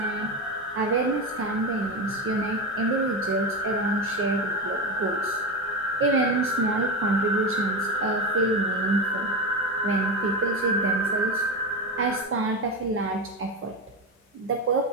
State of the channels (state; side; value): normal; both; correlation 0.18